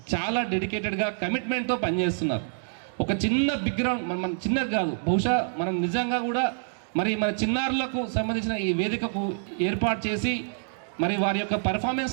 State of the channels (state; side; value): silent; left; digital silence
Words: చాలా డెడికేటెడ్గా కమిట్మెంట్తో పనిచేస్తున్నారు. ఒక చిన్న బిగ్రౌండ్ మన చిన్నది కాదు, బహుశా మనం నిజంగా కూడా మరి మన చిన్నారులకు సంబంధించిన ఈ వేదికకు ఏర్పాటు చేసి మరి వారి యొక్క